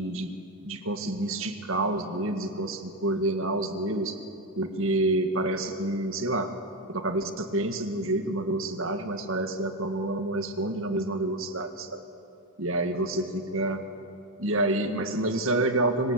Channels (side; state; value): both; normal; correlation 0.10